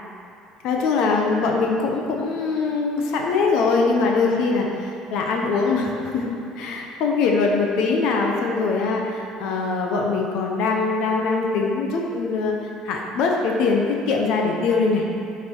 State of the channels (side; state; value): right; quieter; 3.7 dB